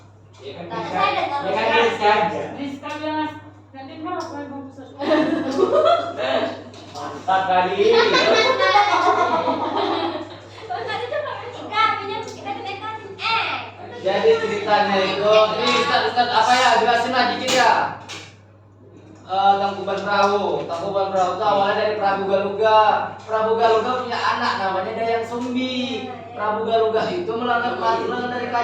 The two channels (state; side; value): identical; both; correlation 1.00